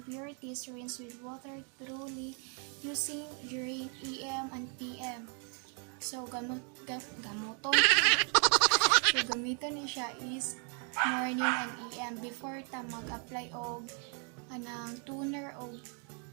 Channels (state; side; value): quieter; left; 38.9 dB